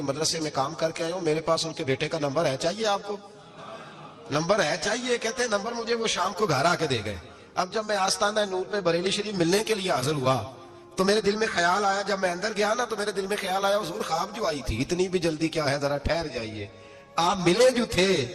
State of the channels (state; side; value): identical; both; correlation 1.00